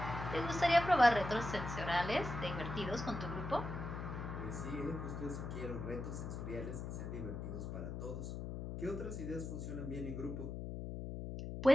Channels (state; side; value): noise; left; hum, 5 dB below the sound